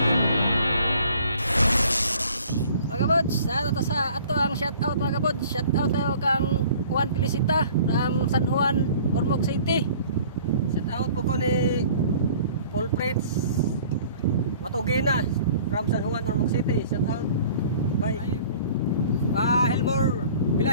Mga kabods, ato ang shoutout mga kabods. Shoutout tayo kang Juan Felicita from San Juan, Ormoc City. Shoutout po ko ni Paul Fritz Matugina from San Juan, Ormoc City. Shoutout by Helmore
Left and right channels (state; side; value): inverted; both; correlation -0.50